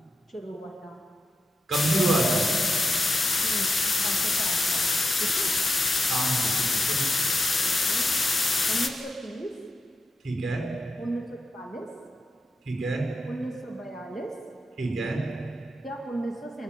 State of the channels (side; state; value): both; normal; correlation 0.88